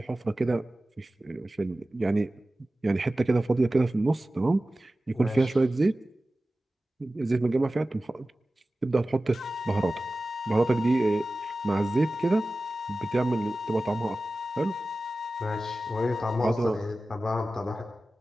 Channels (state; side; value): normal; both; correlation 0.96